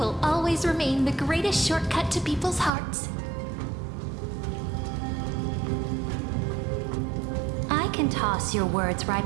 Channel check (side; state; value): left; drops out; at 2.7 s